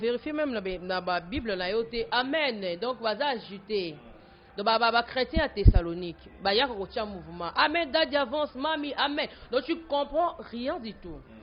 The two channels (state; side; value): identical; both; correlation 1.00